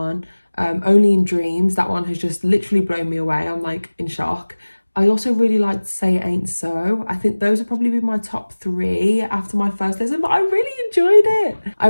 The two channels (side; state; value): both; inverted; correlation -1.00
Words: Only in Dreams. That one has just literally blown me away. I'm like in shock. I also really liked Say It Ain't So. I think those would probably be my top 3 after my first listen, but I really enjoyed it. I